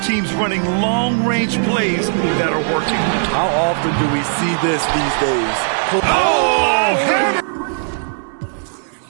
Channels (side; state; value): left; silent; digital silence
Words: teams running long-range plays that are working. How often do we see this these days? Oh, hammer!